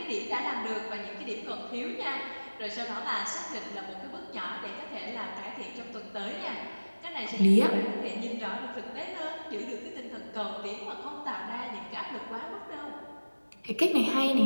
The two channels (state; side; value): inverted; both; correlation -1.00